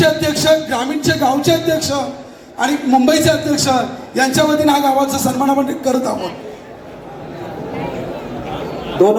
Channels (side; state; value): both; identical; correlation 1.00